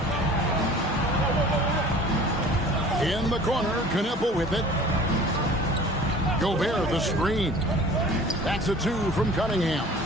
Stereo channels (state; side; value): normal; both; correlation 0.46